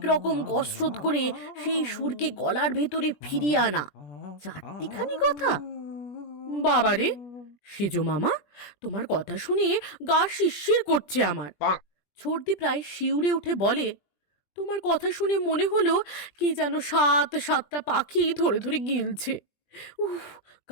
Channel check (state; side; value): late; right; 21 ms